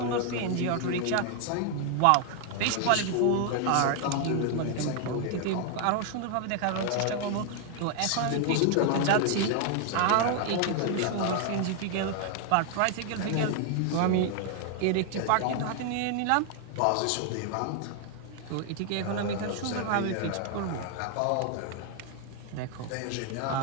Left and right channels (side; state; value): both; different; correlation 0.00